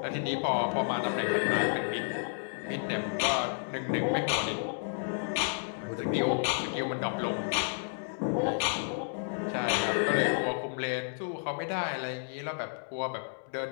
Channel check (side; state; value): right; silent; digital silence